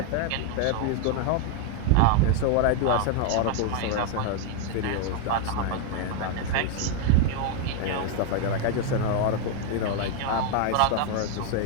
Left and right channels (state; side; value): different; both; correlation 0.01